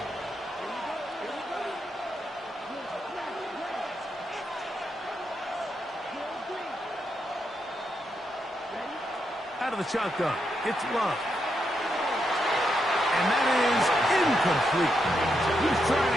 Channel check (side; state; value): both; normal; correlation 0.82